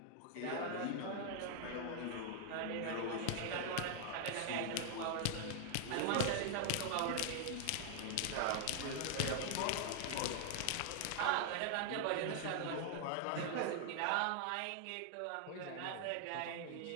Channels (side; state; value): both; different; correlation 0.00